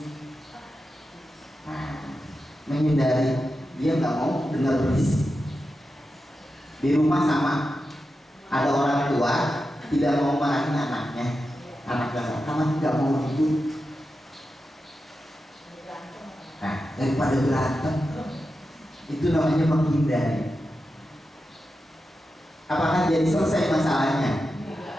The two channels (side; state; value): both; normal; correlation 0.90